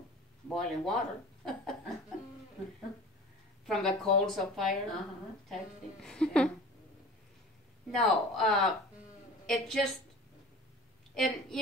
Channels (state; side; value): normal; both; correlation 0.40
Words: boiling water. From the coals of fire type thing. Yeah. No, it just, and